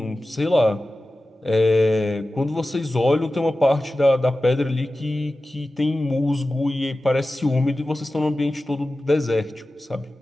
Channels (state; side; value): normal; both; correlation 0.95